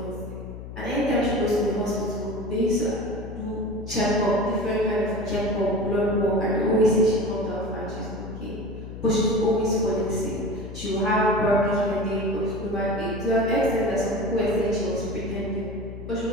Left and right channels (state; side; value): noise; left; hum, 11 dB below the sound